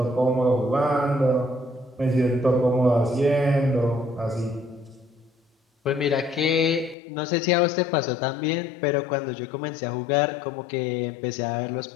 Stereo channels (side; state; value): right; drops out; at 7.0 s